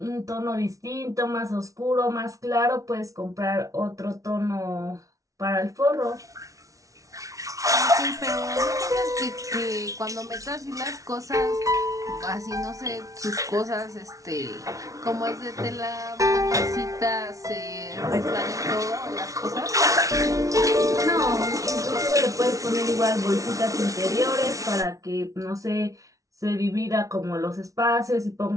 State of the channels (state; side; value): late; left; 0.17 ms